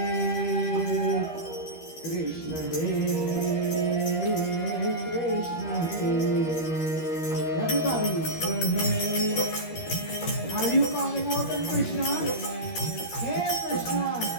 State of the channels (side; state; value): right; late; 13 ms